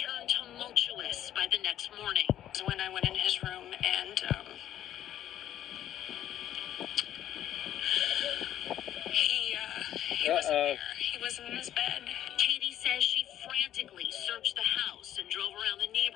tumultuous by the next morning. It was when I went in his room and, he wasn't there. He wasn't in his bed. Katie says she frantically searched the house and drove around the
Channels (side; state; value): right; quieter; 11.6 dB